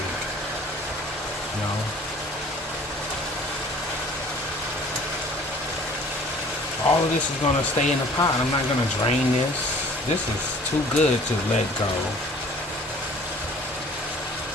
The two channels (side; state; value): both; normal; correlation 0.50